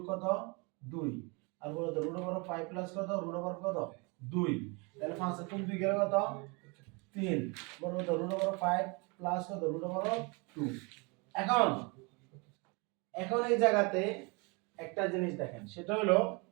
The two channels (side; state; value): left; quieter; 30.2 dB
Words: কত 2 আর বড় √5 প্লাস কত কত 2 তাহলে 5 এর কোন 2 গেল কত 3 বড় √5 প্লাস কত √2 এখন এখন এই জায়গাতে একটা জিনিস দেখেন, সেটা হলো